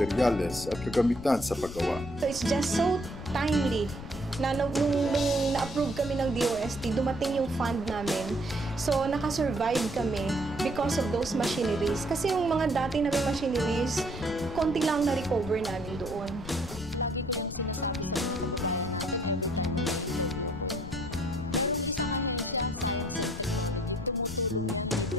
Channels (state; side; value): noise; left; rumble, 11 dB below the sound